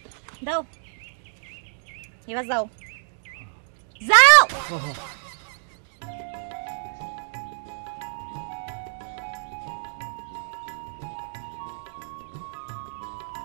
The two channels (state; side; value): silent; left; digital silence